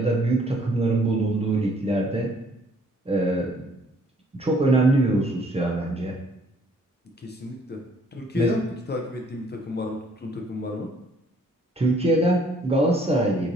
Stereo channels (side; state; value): both; normal; correlation 0.62